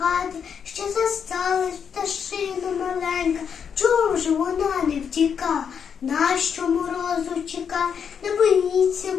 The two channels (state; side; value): quieter; right; 7.2 dB